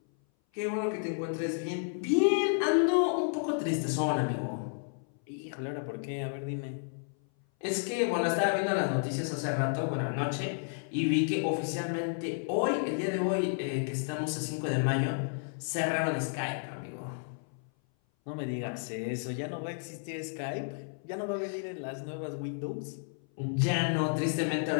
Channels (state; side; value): silent; right; 57 dB below the other